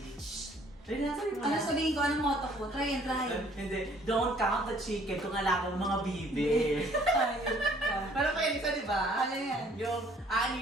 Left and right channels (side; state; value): both; normal; correlation 0.59